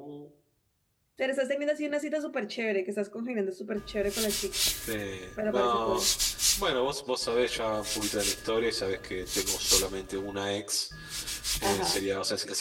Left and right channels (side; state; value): both; identical; correlation 1.00